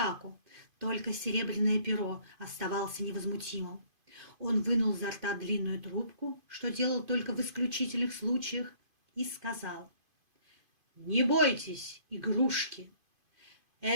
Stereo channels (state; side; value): late; left; 2.5 ms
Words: Только Серебряное Перо оставался невозмутимым. Он вынул изо рта длинную трубку, что делал только в исключительных случаях, и сказал: «Не бойтесь, игрушки!